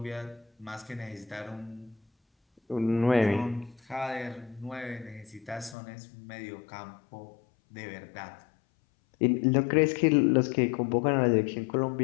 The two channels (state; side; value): drops out; right; at 5.8 s